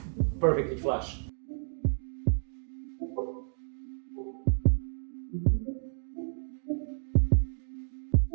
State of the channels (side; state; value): left; silent; digital silence